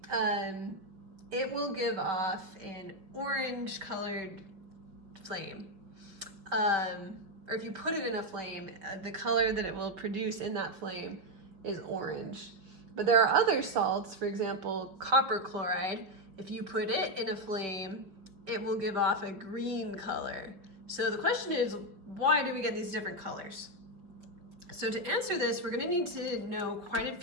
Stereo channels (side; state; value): left; late; 5.2 ms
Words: it will give off an orange colored flame. Or if you put it in a flame, the color that it will produce in that flame is orange. But there are other salts, for example, copper chloride. If you put it in a flame, it will give off a green color. So the question is, why do we get these different colors? So to answer this, we're gonna need to know quite a